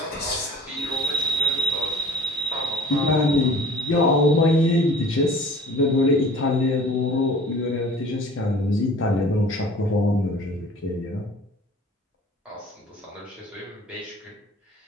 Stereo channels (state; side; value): normal; both; correlation 0.46